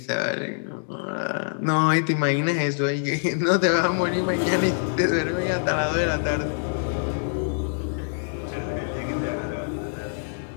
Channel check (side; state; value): right; silent; digital silence